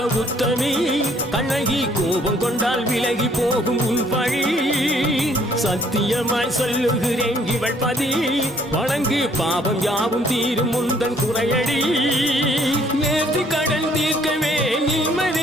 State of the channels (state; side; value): normal; both; correlation 0.62